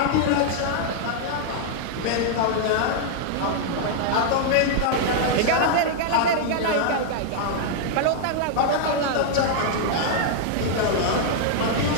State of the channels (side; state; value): both; different; correlation -0.01